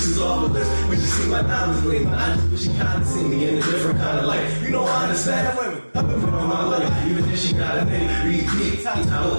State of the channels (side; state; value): both; inverted; correlation -1.00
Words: off the list when she see my diamonds gleam. I just wish she kinda see me in a different kind of light. You know I understand women. I've been putting on my life, even if she got a nigga. Repeat, got a